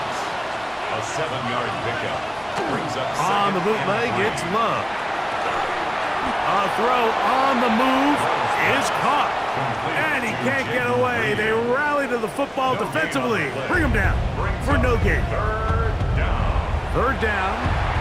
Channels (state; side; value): identical; both; correlation 1.00